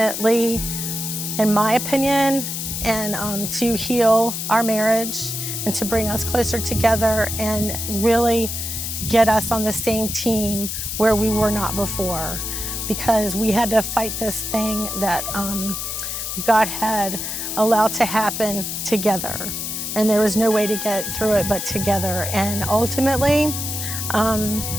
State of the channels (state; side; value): noise; left; hiss, 4 dB below the sound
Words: in my opinion, and to heal our marriage and to bring us closer together and really get us on the same team where we were not before, because we had to fight this thing that God had allowed to happen together, and there was no way to get through it but together. And ultimately,